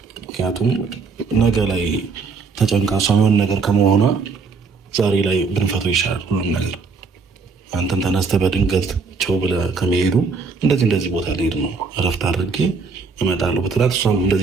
ምክንያቱም ነገ ላይ ተጨንቃ እሷ የሆነ ነገር ከመሆኗ ዛሬ ላይ ብንፈተው ይሻላል ሁሉም ነገር። አንተን ተነስተህ በድንገት ቸው ብለህ ከመሄዱ እንደዚህ ቦታ ልሄድ ነው እረፍት አድርጌ እመጣለሁ ብትላት እሷም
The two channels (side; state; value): left; quieter; 4.9 dB